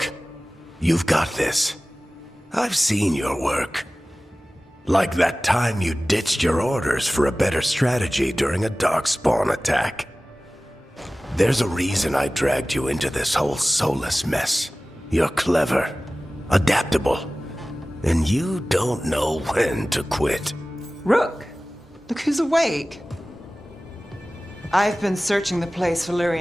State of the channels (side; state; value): both; normal; correlation 0.97